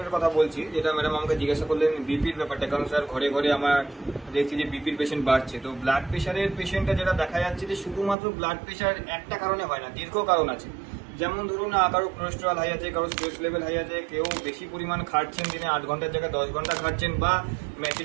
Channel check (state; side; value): drops out; left; at 8.2 s